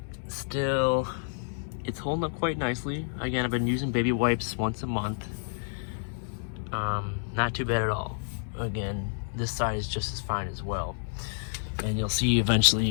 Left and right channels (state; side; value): silent; right; digital silence